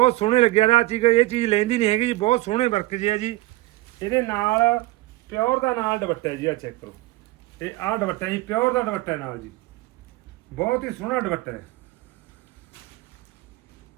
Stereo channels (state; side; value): quieter; left; 19.2 dB